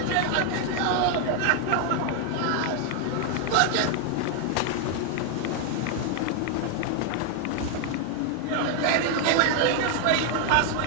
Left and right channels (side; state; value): both; different; correlation 0.00